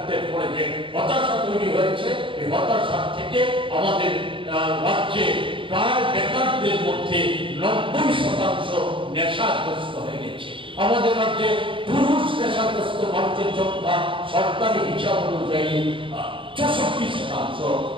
পরে যে হতাশা তৈরি হয়েছে, এই হতাশা থেকে আমাদের রাজ্যে প্রায় বেকারদের মধ্যে 90% নেশাগ্রস্ত হয়ে গেছে। আমাদের রাজ্যে পুরুষ নেশাগ্রস্ত মানুষের সংখ্যা সরকারি হিসাব অনুযায়ী 64%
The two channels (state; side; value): late; left; 0.25 ms